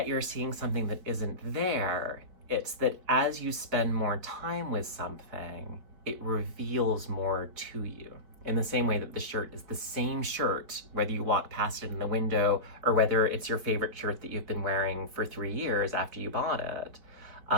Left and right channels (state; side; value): late; left; 4.5 ms